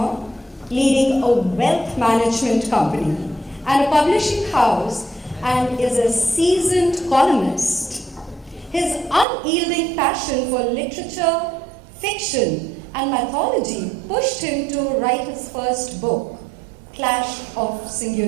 leading a wealth management company and a publishing house, and is a seasoned columnist. His unyielding passion for literature, fiction, and mythology pushed him to write his first book, Clash of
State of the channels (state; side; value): drops out; left; at 9.2 s